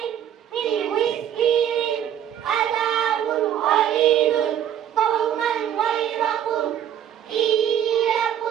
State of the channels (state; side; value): quieter; left; 10.1 dB